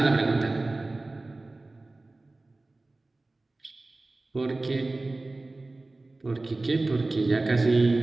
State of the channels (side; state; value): left; quieter; 3.1 dB